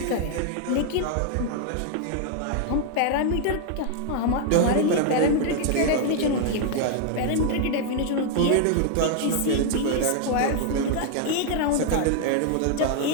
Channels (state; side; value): different; both; correlation 0.00